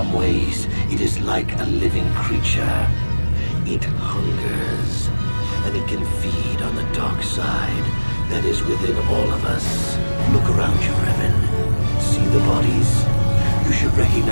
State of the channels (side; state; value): both; inverted; correlation -1.00